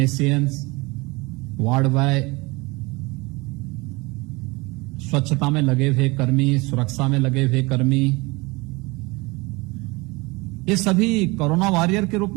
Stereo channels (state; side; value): quieter; left; 24.7 dB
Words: ward boy, स्वच्छता में लगे हुए कर्मी, सुरक्षा में लगे हुए कर्मी, ये सभी कोरोना वॉरियर के रूप